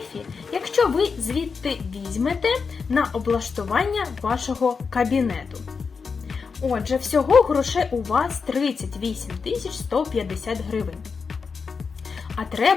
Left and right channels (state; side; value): quieter; right; 5.3 dB